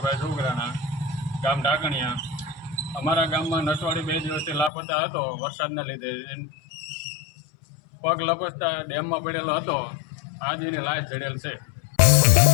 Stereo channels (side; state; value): right; drops out; at 4.7 s